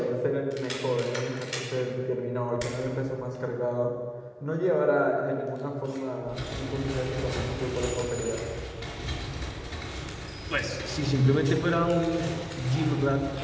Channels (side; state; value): both; identical; correlation 1.00